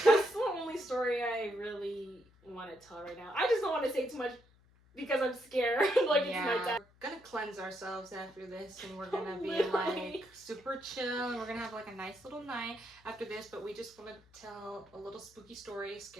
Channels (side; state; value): left; noise; hum, 29 dB below the sound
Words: that's the only story I really want to tell right now. I just don't want to say too much because I'm scared. Like, it's nighttime. We're gonna cleanse ourselves after this, and we're gonna be Literally. like super chill, and we're gonna have like a nice little night after this. But we just want to tell a little spooky story,